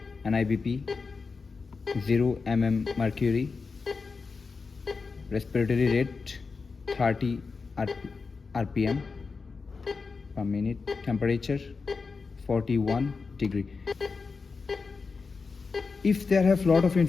NIBP, 0 mm mercury. Respiratory rate, 30 RPM per minute. Temperature, 41 degree. If there have lot of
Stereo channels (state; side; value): quieter; right; 4.7 dB